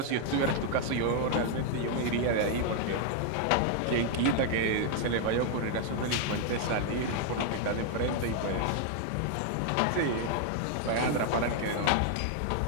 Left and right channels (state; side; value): different; both; correlation 0.00